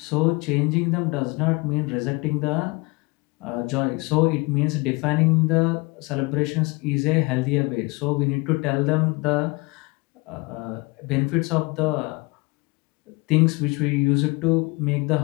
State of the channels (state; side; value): quieter; right; 26.5 dB